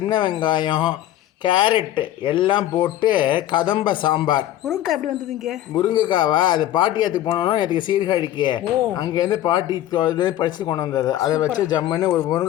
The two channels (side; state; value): right; quieter; 13.0 dB